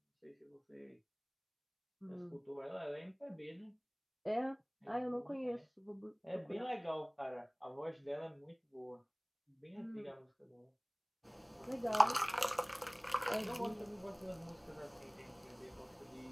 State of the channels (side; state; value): both; identical; correlation 1.00